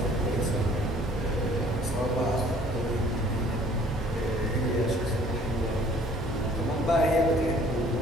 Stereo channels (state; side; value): normal; both; correlation 0.56